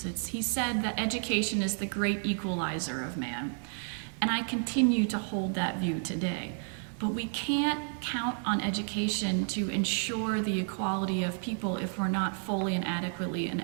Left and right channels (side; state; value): left; silent; 57 dB below the other